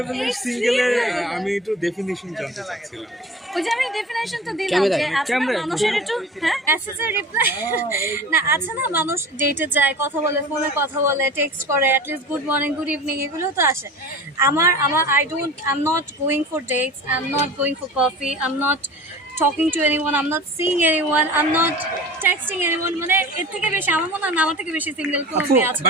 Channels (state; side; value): normal; both; correlation 0.37